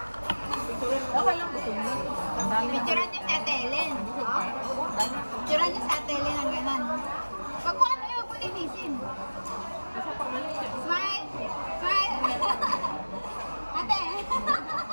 Okay lang gusto mo. Picturean niyo sa Ate Ellen. Picturean niyo sa Ate Ellen ang ganan. Pag kung ano yung pulinisin. Smile! Smile! Ate!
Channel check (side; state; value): both; inverted; correlation -1.00